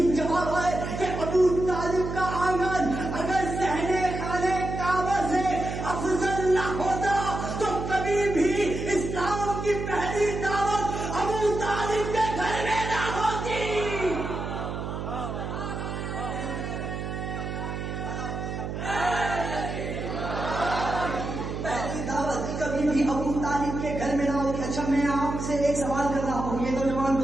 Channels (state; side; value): noise; right; hum, 5 dB below the sound